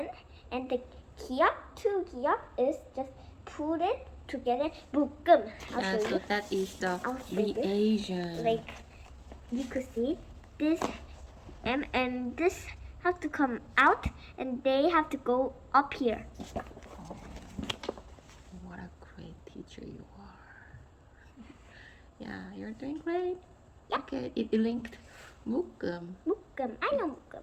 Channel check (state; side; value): identical; both; correlation 1.00